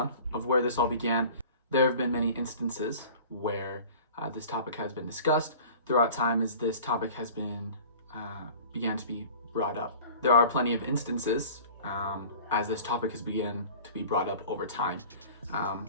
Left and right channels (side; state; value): both; inverted; correlation -0.43